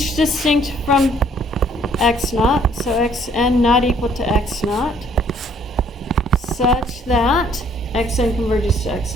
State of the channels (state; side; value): normal; both; correlation 0.62